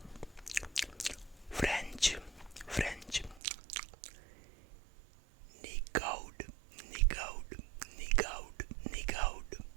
French, French. Nick out, nick out, nick out, nick out,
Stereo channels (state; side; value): drops out; left; at 3.4 s